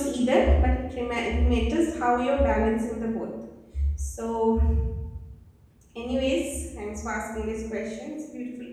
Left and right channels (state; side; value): identical; both; correlation 1.00